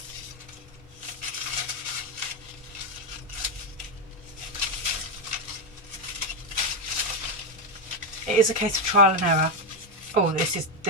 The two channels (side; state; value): both; normal; correlation 0.05